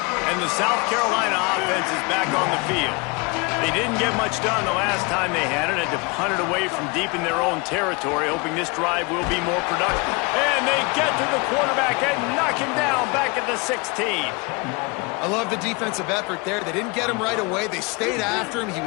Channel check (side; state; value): right; quieter; 28.7 dB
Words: And the South Carolina offense is back on the field. They didn't get much done the last time they had it. Had to punt it away from deep in their own territory, hoping this drive will be more productive. And they get to the quarterback and knock him down back at the 16. I love the defensive effort there. They didn't get him right away. They stayed after him. He